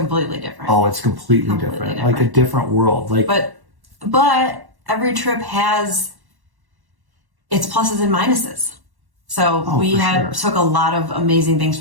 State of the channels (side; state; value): left; late; 1.1 ms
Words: different. Oh, it's completely different. Like a different world. Like, but every trip has its pluses and minuses. So we took a lot of amazing things